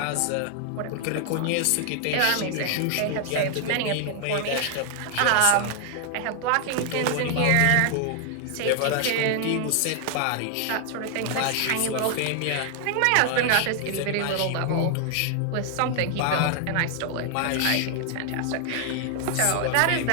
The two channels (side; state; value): both; different; correlation 0.00